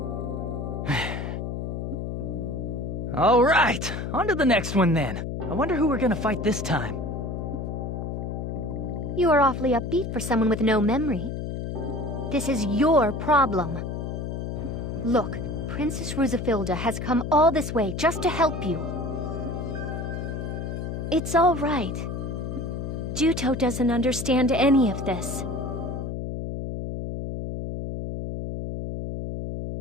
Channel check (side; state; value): left; noise; hum, 4 dB below the sound